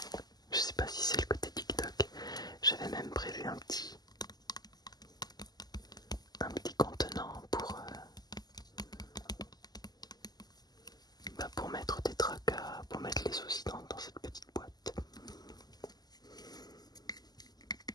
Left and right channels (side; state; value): right; late; 0.20 ms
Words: je sais pas si c'est le côté TikTok, j'avais même prévu un petit contenant pour mettre des tracas, pour mettre les soucis dans cette petite boîte.